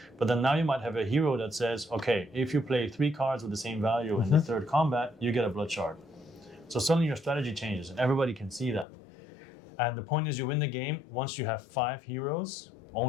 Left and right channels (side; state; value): right; drops out; at 8.8 s